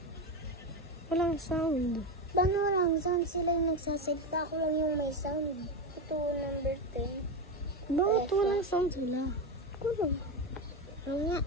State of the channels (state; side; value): normal; both; correlation 0.14